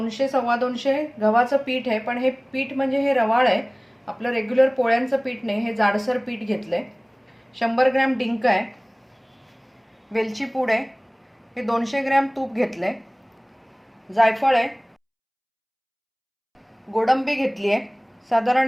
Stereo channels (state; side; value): identical; both; correlation 1.00